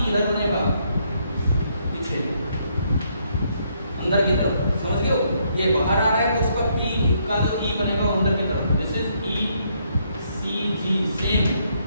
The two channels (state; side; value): inverted; both; correlation -0.72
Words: किधर बनेगा? पीछे अंदर की तरफ, समझ गए हो? ये बाहर आ रहा है तो उसका P का जो E बनेगा वो अंदर की तरफ। This is E CG same